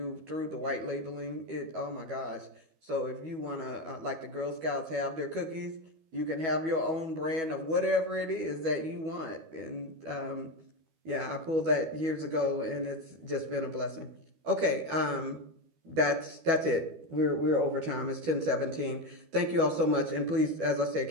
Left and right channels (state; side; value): late; left; 12 ms